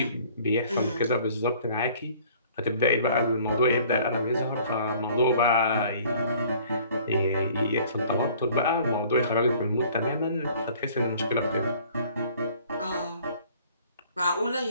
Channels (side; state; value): both; inverted; correlation -0.54